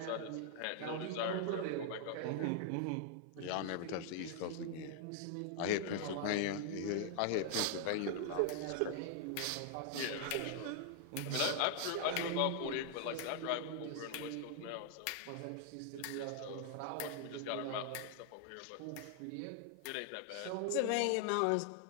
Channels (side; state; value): both; different; correlation 0.00